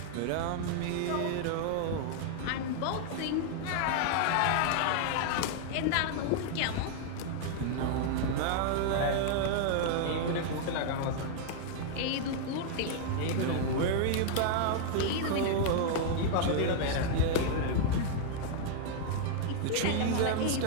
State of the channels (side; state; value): both; different; correlation 0.00